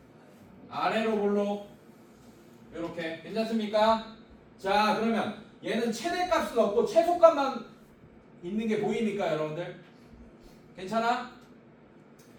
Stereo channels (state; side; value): identical; both; correlation 1.00